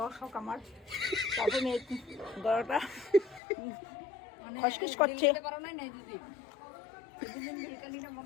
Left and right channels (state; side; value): drops out; right; at 3.4 s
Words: হোক আমার, তারপরে গলাটা মানে খসখস করছে। দিতে পারো নাই দিদি দুদিন ভিডিওটা নিলে মন